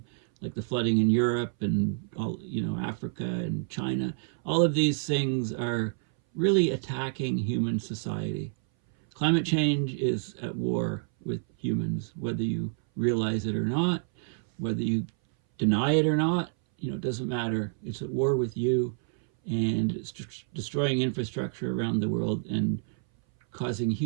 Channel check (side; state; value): left; silent; 59 dB below the other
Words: like the flooding in Europe and all, you know, Africa and China. All of these things are really attacking human society. Climate change is at war with humans, whether you realize it or not, whether you deny it or not, you know, it doesn't matter. It's at war with you, and it's destroying infrastructure around the world and causing